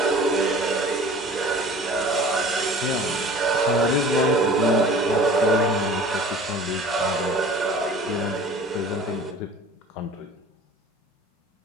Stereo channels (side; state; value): both; normal; correlation 0.44